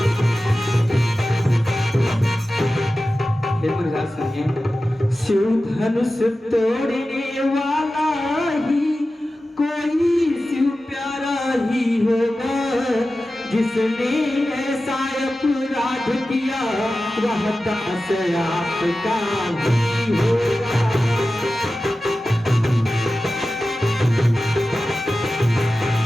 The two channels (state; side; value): normal; both; correlation 0.94